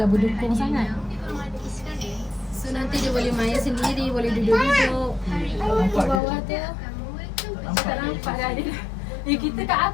berdukung sangat. So nanti dia boleh main sendiri, boleh duduk-duduk. Di bawah tu. Tak nampak dah dia. Kita kat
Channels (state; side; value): drops out; right; at 6.2 s